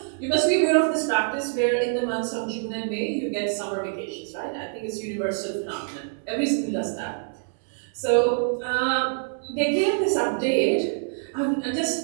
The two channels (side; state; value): left; silent; 61 dB below the other